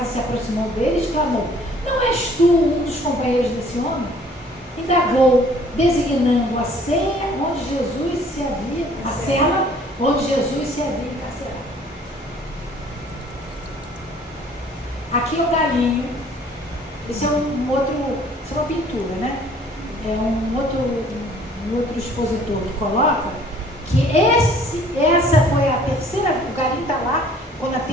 se aproximou dele e exclamou: não és tu um dos companheiros desse homem? Indagou, designando a cela onde Jesus se havia encarcerado. Aqui é o galinho. Esse é isso é uma pintura, né? É um outro expositor que coloca que essa foi a terceira, o galinho está lá, quando a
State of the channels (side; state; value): both; normal; correlation 0.56